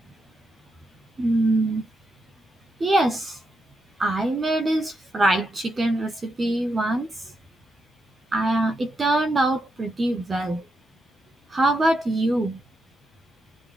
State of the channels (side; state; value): both; normal; correlation 0.83